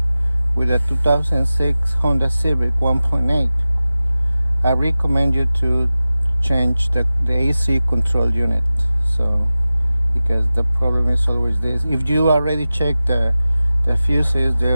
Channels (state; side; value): inverted; both; correlation -0.95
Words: with a 2006 Honda Civic 1.8, I recommend you to change the AC control unit. So because the problem is always this, if you already checked the fuses,